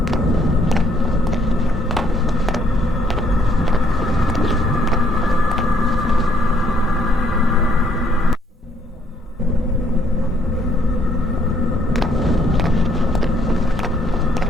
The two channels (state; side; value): normal; both; correlation 0.67